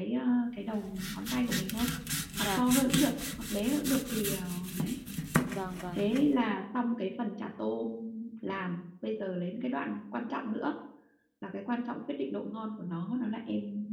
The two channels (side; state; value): both; identical; correlation 1.00